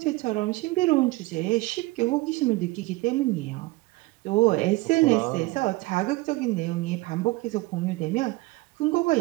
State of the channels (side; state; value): left; quieter; 21.4 dB